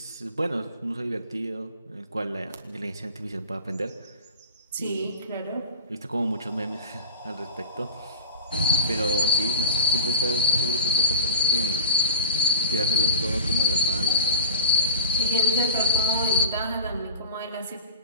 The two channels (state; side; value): inverted; both; correlation -0.32